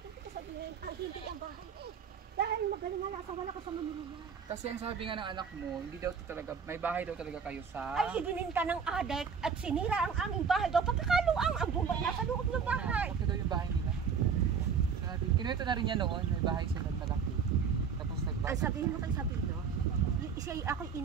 ko sabihin. Hindi ang bahay eh. Dahil magaling nga lasa, wala ka sa Manila. Kasi ang sabi nga ng anak mo, hindi daw talaga, may bahay daw talaga kayo sa... Ay, ibininta ng adek at sinira ang aming bahay daw. Pagkakaluang ang bumay nasa loob ng bahay. Ito daw yung bahay nila. Sabi, kinuwento na rin niya noon, may bahay sila malaki. Tapos Ang nagbasa. sabihin mo kay Sabino, siya'y ako'y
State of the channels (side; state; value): left; quieter; 6.4 dB